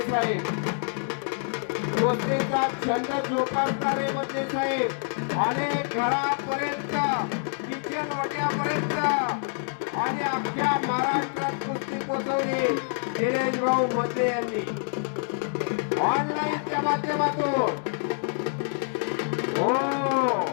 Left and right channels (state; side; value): silent; right; 60 dB below the other